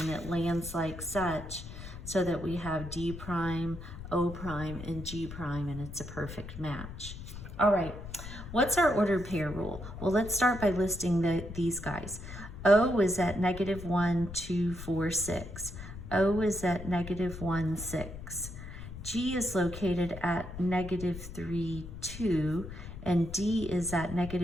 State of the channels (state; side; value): noise; left; rumble, 11 dB below the sound